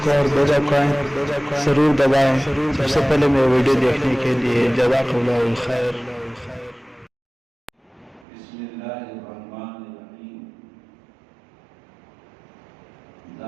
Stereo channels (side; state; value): left; drops out; at 8.2 s